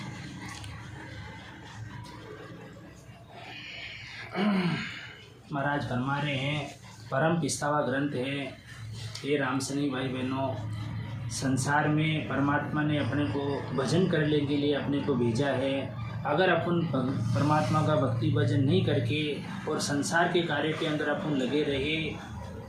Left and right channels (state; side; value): identical; both; correlation 1.00